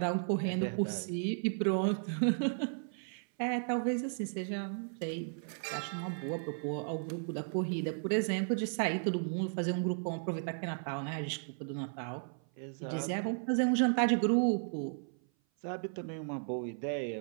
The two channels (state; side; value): silent; left; 55 dB below the other